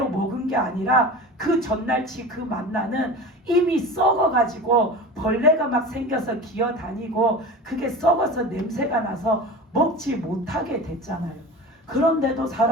먹은 게 아니라 그 전날치 그 만나는 이미 썩어가지고 벌레가 막 생겨서 기어다니고 그게 썩어서 냄새가 나서 먹지 못하게 됐잖아요. 그런데도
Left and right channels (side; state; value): both; normal; correlation 0.32